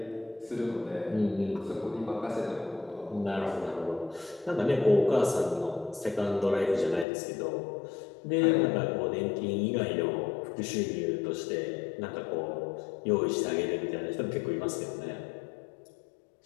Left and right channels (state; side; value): drops out; right; at 7.1 s